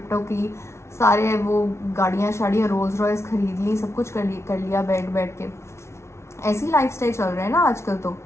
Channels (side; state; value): right; late; 0.13 ms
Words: की, सारे वो गाड़ियाँ शाड़ियाँ, रोल्स रॉयस खरीद ली, सब कुछ कर लिया बैठ के। ऐसी लाइफस्टाइल चल रहे हैं ना आजकल तो